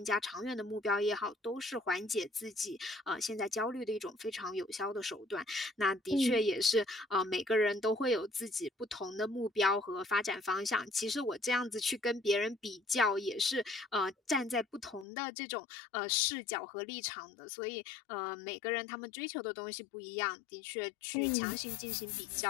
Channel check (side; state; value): right; drops out; at 15.1 s